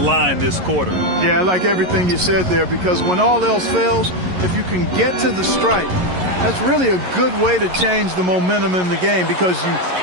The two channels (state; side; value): late; left; 11 ms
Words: this quarter. Yeah, I like everything you said there, because when all else fails, if you can get to the stripe, that's really a good way to change the momentum in the game, because you